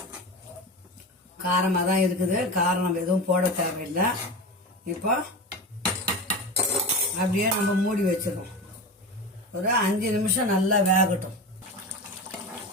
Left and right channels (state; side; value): normal; both; correlation 0.26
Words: காரமாக தான் இருக்குது. காரம் நம்ம எதுவும் போட தேவையில்லை. இப்போ அப்படியே நம்ம மூடி வச்சிடணும். ஒரு 5 நிமிஷம் நல்லா வேகட்டும்.